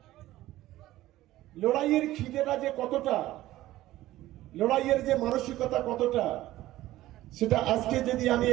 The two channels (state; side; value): quieter; left; 15.7 dB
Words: লড়াইয়ের খিদেটা যে কতটা, লড়াইয়ের যে মানসিকতা কতটা, সেটা আজকে যদি আমি